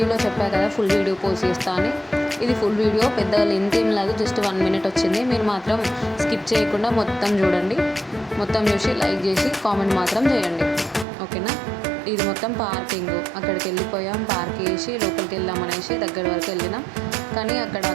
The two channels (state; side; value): drops out; left; at 11.1 s